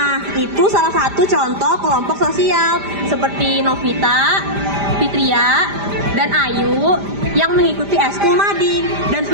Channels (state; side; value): late; left; 5.0 ms